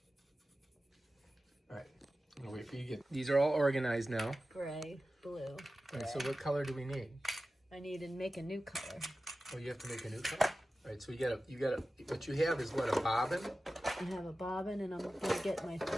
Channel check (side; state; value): both; normal; correlation 0.94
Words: All right, I'm gonna wait for you to get. These are all organized now. Gray, blue. All right, so what color do we need? I need to make a new color. Oh, you have to make a new color? All right, so you gotta, what you have is what, a bobbin? I have a bobbin and I'm gonna get my